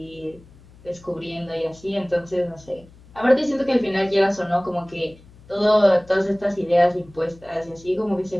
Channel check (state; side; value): noise; left; hum, 24 dB below the sound